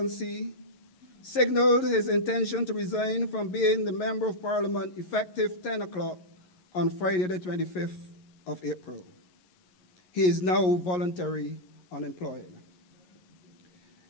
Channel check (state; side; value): late; right; 11 ms